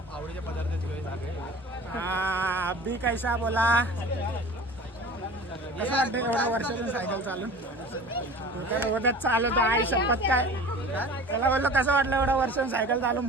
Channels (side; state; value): both; normal; correlation 0.40